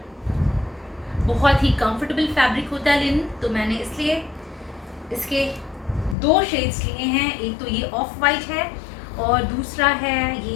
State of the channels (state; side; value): drops out; right; at 6.2 s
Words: बहुत ही कंफर्टेबल फैब्रिक होता है लिनन, तो मैंने इसलिए इसके 2 शेड्स लिए हैं। एक तो ये ऑफ वाइट है और दूसरा है